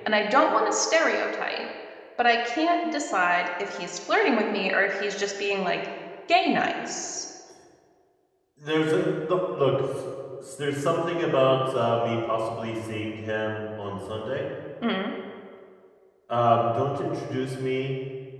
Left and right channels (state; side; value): identical; both; correlation 1.00